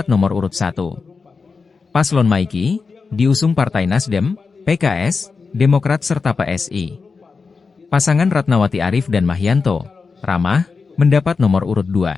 nomor urut 1. Paslon Maiki, diusung Partai Nasdem, PKS, Demokrat serta PSI. Pasangan Ratnawati Arif dan Mahyanto, Ramah, mendapat nomor urut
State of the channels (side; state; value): right; quieter; 4.8 dB